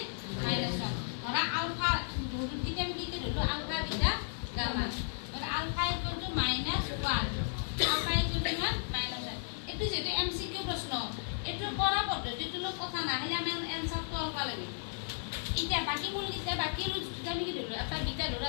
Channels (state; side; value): silent; right; digital silence